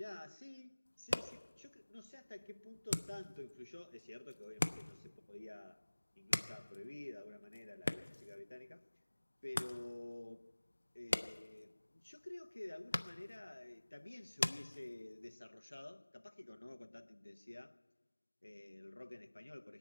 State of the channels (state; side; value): inverted; both; correlation -1.00